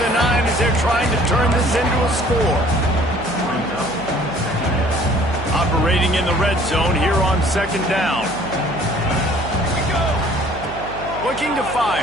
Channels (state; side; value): noise; right; hum, 13 dB below the sound